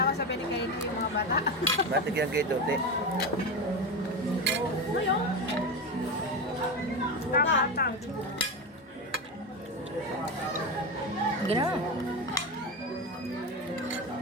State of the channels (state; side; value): normal; both; correlation 0.19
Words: ko sabi ni Kaino yung mga bata. Batik yan kay Dote. Ngayon? Bata. Gina.